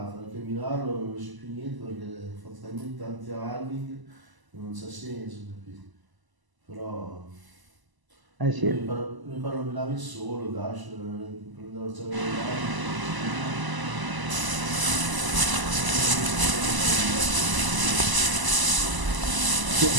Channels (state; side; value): late; left; 1.0 ms